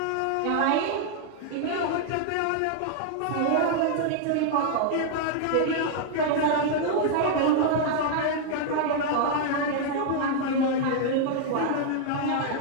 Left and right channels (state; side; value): different; both; correlation 0.00